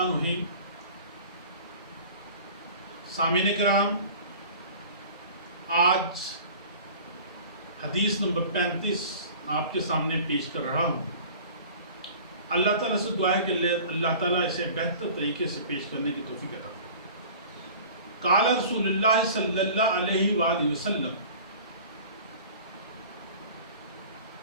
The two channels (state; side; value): inverted; both; correlation -0.43